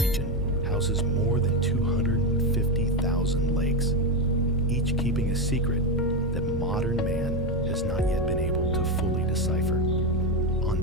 houses more than 250,000 lakes, each keeping a secret that modern man has not yet been able to fully decipher?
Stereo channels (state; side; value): noise; right; rumble, 10 dB below the sound